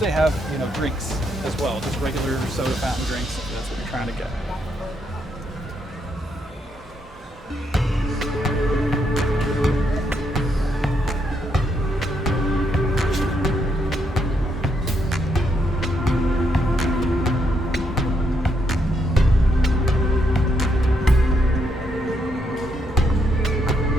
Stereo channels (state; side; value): normal; both; correlation 0.77